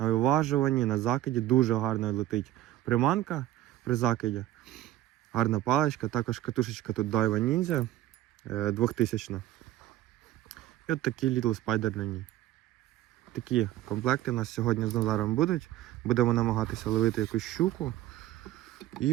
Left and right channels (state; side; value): quieter; left; 14.1 dB